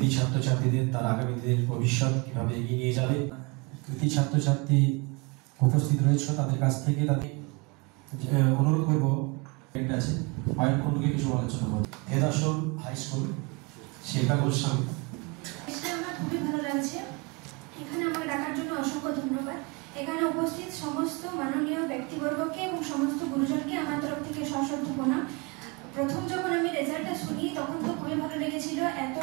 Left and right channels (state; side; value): quieter; left; 28.3 dB